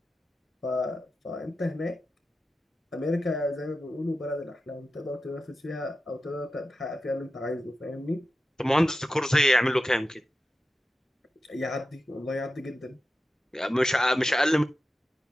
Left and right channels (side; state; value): both; normal; correlation 0.92